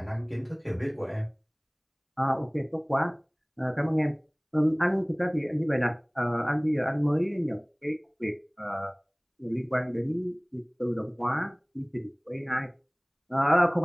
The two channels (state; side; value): identical; both; correlation 1.00